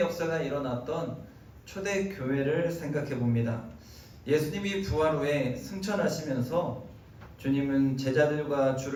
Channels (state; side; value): identical; both; correlation 1.00